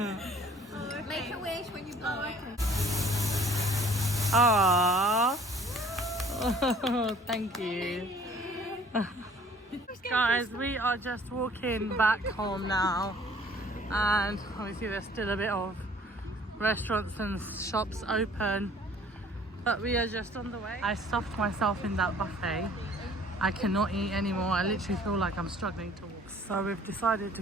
it? Make a wish when you blow it. Aww. Oh, thank you. Guys, we are just walking back home now. And obviously there's still a bit of restaurants and shops open. But we are just on the way. I stuffed myself in that buffet. I cannot eat anymore. I literally feel like I'm struggling to walk. So we've decided to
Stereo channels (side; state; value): both; normal; correlation 0.54